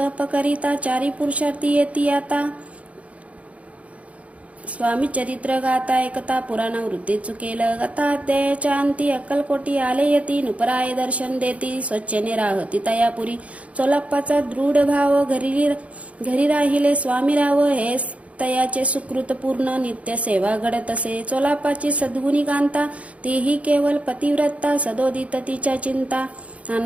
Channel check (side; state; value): left; late; 0.065 ms